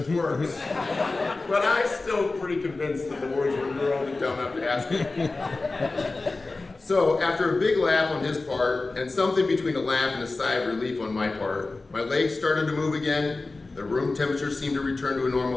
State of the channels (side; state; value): right; quieter; 3.4 dB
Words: words. But I'm still pretty convinced that the words were, you were only dumb enough to ask it. So after a big laugh on his part, and something between a laugh and a sigh of relief on my part, my legs started to move again, the room temperature seemed to return to a